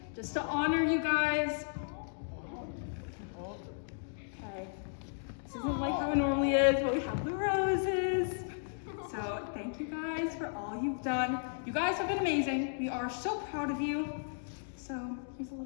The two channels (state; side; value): silent; right; digital silence